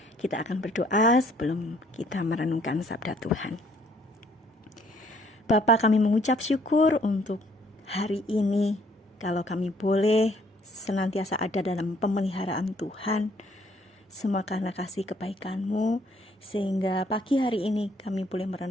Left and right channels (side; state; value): both; normal; correlation 0.64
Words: Kita akan berdoa sebelum kita merenungkan sabda Tuhan. Bapa, kami mengucap syukur untuk hari ini, kalau kami boleh senantiasa ada dalam pemeliharaan Tuhan. Semua karena kasih kebaikan-Mu, sehingga pagi hari ini kami boleh